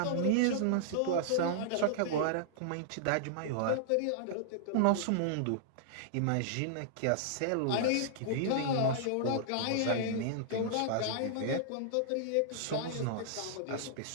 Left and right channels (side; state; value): both; different; correlation -0.01